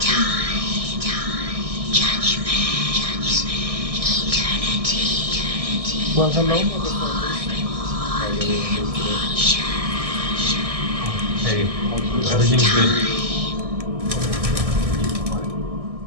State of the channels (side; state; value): left; late; 1.7 ms